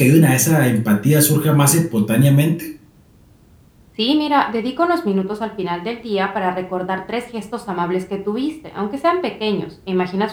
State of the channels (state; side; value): identical; both; correlation 1.00